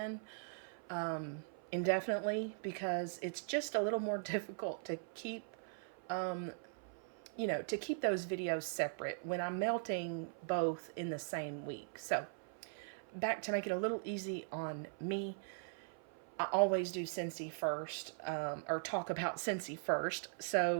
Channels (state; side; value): silent; left; 51 dB below the other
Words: indefinitely, because it's just a little more difficult to keep to keep those videos separate when I'm melting both in the same week. So back to make it a little easy on me, I always do Scentsy first, or talk about Scentsy first.